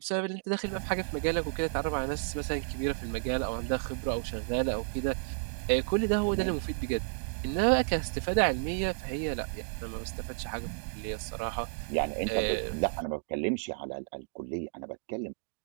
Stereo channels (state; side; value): silent; left; digital silence